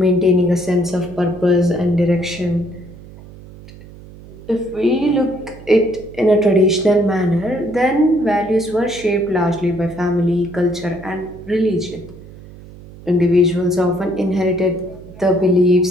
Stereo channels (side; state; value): right; noise; hum, 19 dB below the sound